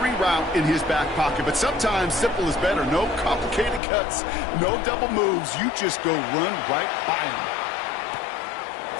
route in his back pocket. But sometimes simple is better. No complicated cuts, no double moves. You just go run right by him.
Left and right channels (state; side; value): drops out; right; at 3.8 s